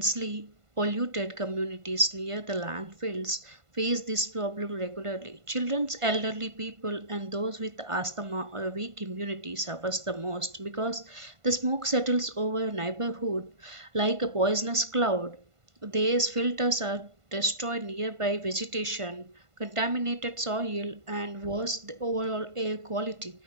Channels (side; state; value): left; late; 1.5 ms